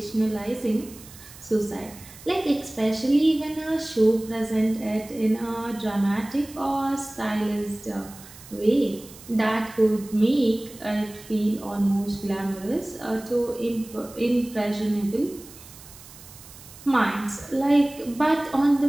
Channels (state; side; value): noise; right; hiss, 19 dB below the sound